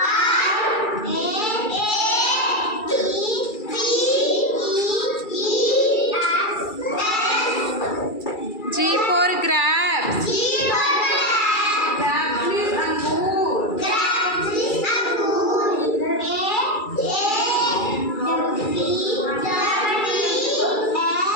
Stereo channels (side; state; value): right; late; 2.3 ms